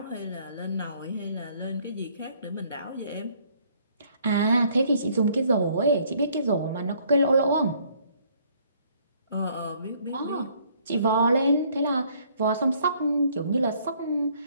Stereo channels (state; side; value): inverted; both; correlation -0.63